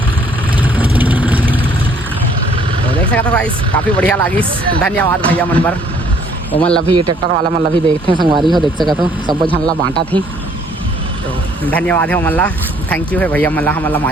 तो देख सकते हो गाइस काफ़ी बढ़िया लागिस धन्यवाद भैया मन बर वो मन अभी ट्रैक्टर वाला मन अभी देखते हैं संगवारी हो देख सकते हो सब झनला बांटा थी तो धन्यवाद है मल्ला थैंक यू है भैया मल्ला हमला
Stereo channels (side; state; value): both; normal; correlation 0.62